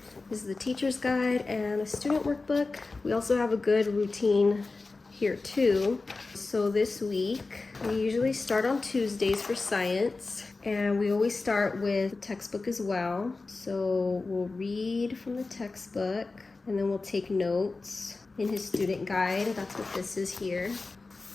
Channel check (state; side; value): quieter; right; 3.7 dB